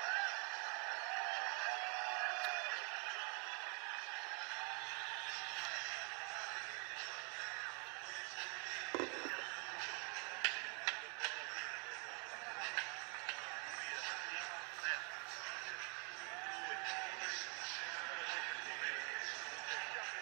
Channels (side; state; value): left; quieter; 35.4 dB